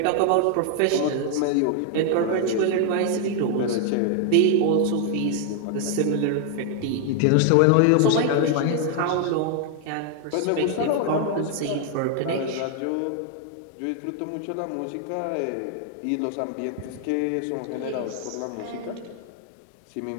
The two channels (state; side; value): different; both; correlation 0.00